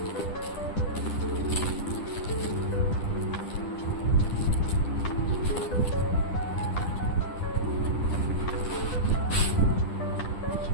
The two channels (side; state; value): right; late; 10 ms